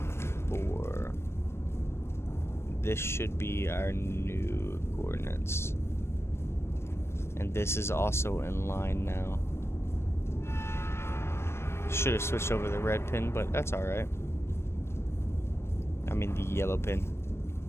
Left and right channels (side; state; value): right; late; 0.12 ms